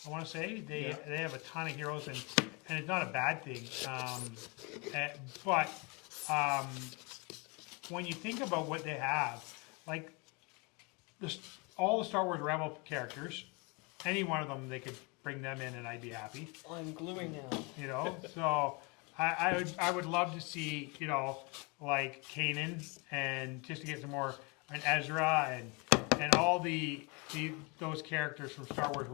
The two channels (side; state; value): right; quieter; 29.9 dB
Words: I want to say they have a ton of heroes, and it's not a bad thing. But when you think about what they have, like all the Star Wars Rebel characters, any one of them, they could bring them in, and I'd be happy. I'm gluing now. So I would love to see like Kanan, and just to get some more, and Ezra, and all those characters from Star Wars